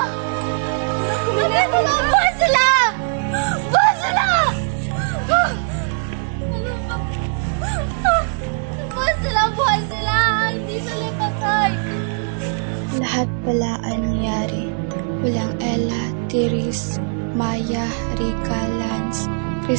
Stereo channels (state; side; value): silent; left; 56 dB below the other